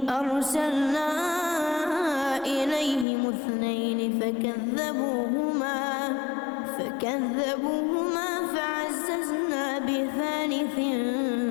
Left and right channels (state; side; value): drops out; right; at 3.1 s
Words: أرسلنا إليهم 2 فكذبوهما فعززنا ب3